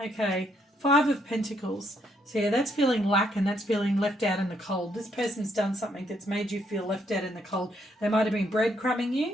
Okay, 5 of Pentacles. So yeah, that's feeling lack, and that's feeling left out in the cold. This person's done something that's made you feel left out in the cold. They might have been breadcrumbing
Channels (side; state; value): both; normal; correlation 0.73